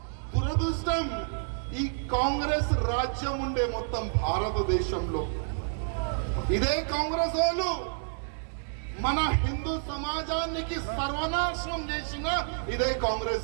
దురదృష్టం ఈ కాంగ్రెస్ రాజ్యం ఉండే మొత్తం భారతదేశంలో. ఇదే కాంగ్రెస్ వాళ్ళు మన హిందూ సమాజానికి సర్వనాశనం చేసిన ఇదే కాంగ్రెస్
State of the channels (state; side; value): silent; left; digital silence